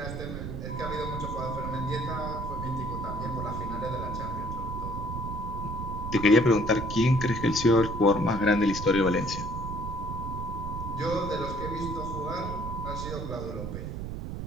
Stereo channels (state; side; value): noise; right; rumble, 5 dB below the sound